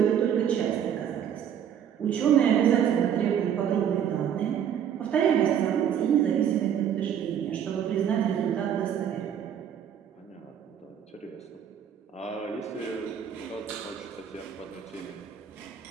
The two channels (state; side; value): quieter; left; 9.0 dB